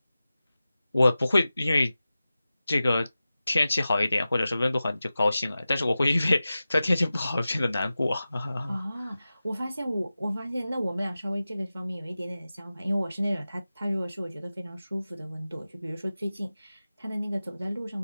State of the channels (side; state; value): both; inverted; correlation -0.95